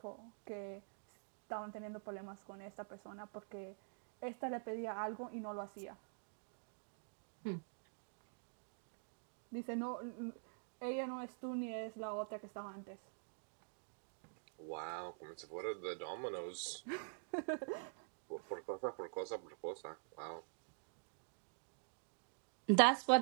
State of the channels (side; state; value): left; silent; digital silence